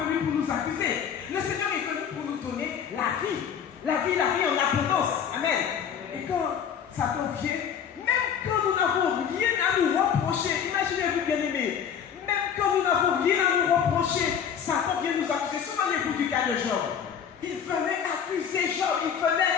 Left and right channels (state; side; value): quieter; right; 8.0 dB